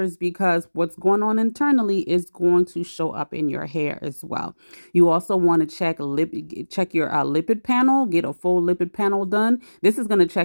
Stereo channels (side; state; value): both; inverted; correlation -1.00